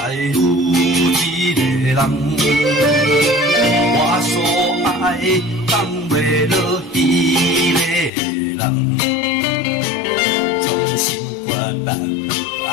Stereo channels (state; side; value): drops out; right; at 8.1 s